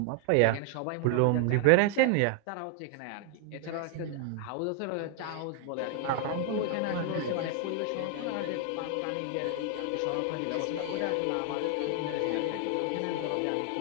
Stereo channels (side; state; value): both; different; correlation 0.00